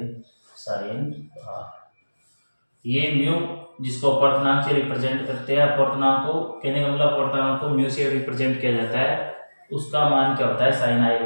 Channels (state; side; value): inverted; both; correlation -1.00